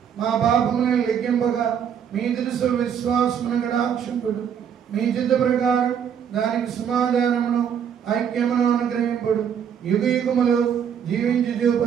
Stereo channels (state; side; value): quieter; left; 8.1 dB